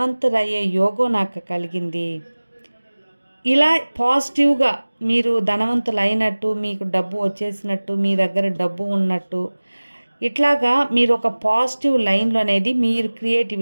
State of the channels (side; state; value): both; inverted; correlation -1.00